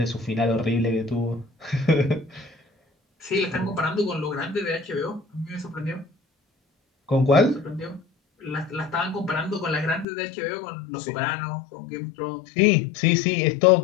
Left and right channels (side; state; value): right; drops out; at 10.1 s